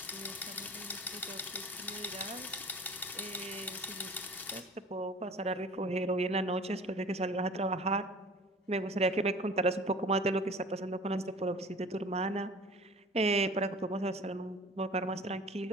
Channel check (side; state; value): both; normal; correlation 0.44